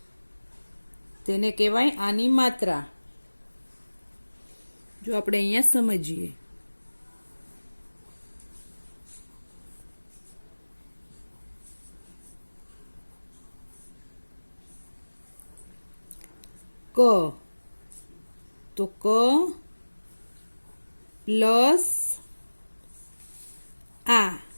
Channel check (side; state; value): both; inverted; correlation -1.00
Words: તેને કહેવાય આની માત્રા. જો આપણે અહીંયા સમજીએ, ક તો ક પ્લસ આ